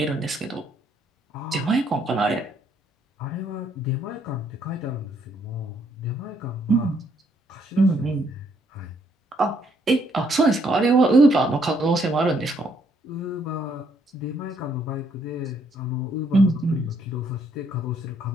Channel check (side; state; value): both; normal; correlation 0.70